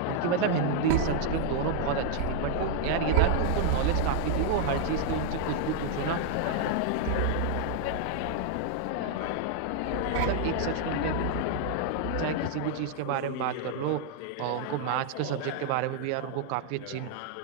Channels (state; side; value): different; both; correlation 0.00